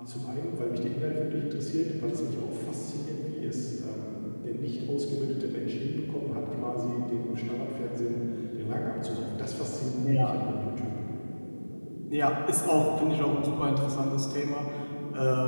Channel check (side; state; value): both; inverted; correlation -1.00